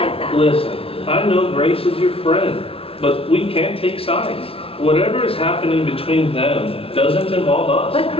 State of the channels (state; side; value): late; right; 0.27 ms